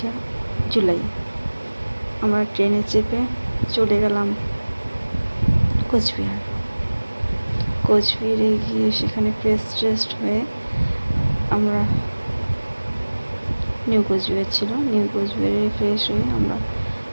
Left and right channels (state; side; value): inverted; both; correlation -1.00